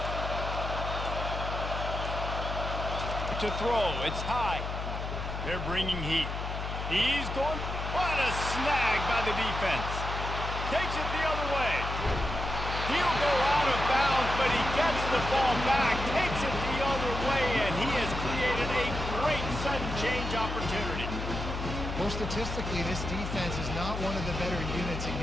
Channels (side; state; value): left; noise; hum, 5 dB below the sound